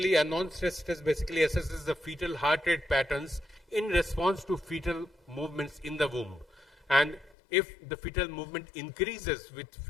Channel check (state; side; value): drops out; right; at 7.4 s